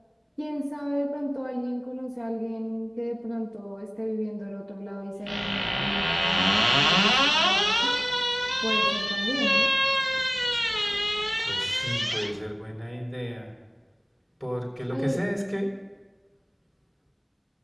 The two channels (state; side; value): identical; both; correlation 1.00